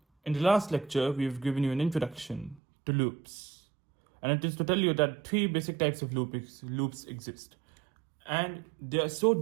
in the last lecture, we've given you an introduction to loops. And it is to tell you that three basic types of loops exist. And they are so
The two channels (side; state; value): left; drops out; at 2.6 s